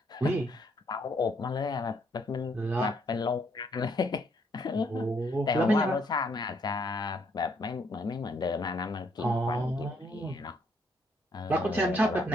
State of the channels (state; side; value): normal; both; correlation 0.70